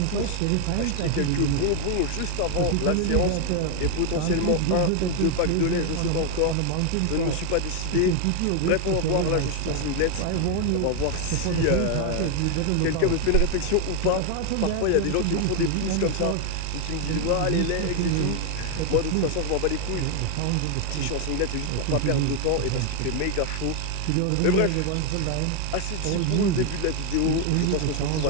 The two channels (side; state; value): both; different; correlation 0.01